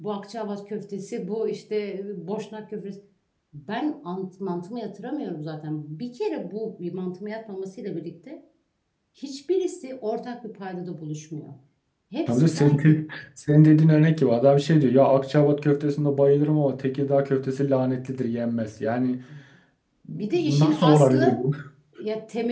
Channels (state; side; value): identical; both; correlation 1.00